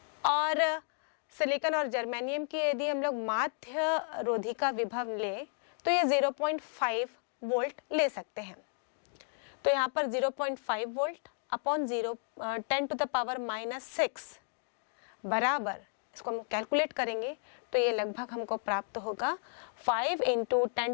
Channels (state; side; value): silent; right; digital silence